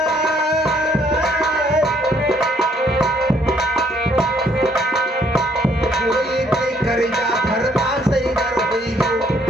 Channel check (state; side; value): normal; both; correlation 0.66